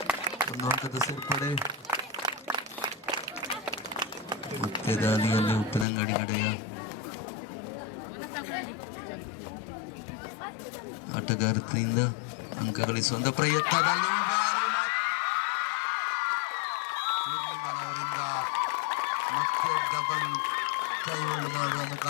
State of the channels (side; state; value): right; drops out; at 5.9 s